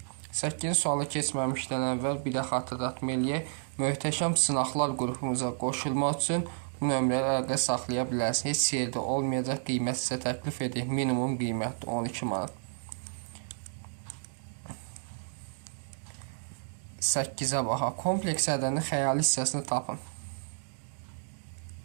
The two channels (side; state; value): left; silent; digital silence